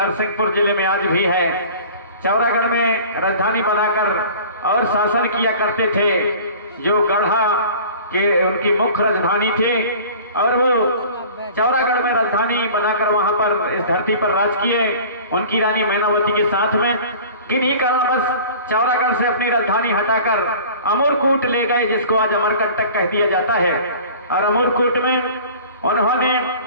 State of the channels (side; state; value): both; inverted; correlation -0.43